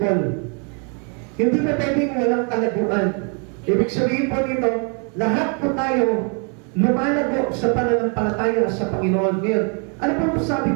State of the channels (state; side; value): quieter; left; 38.0 dB